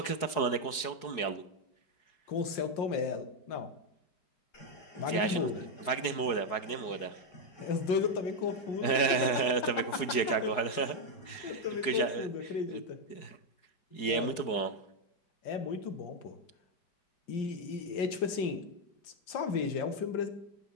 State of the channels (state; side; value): late; right; 4.7 ms